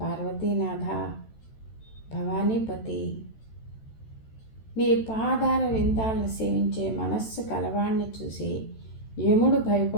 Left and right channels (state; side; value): late; right; 13 ms